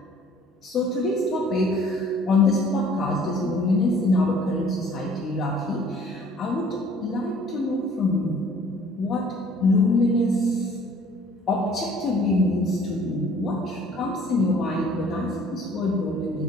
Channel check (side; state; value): both; normal; correlation 0.55